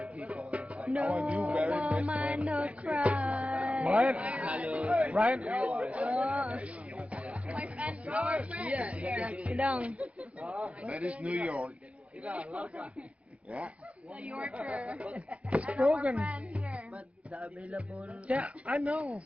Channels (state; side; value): late; left; 0.063 ms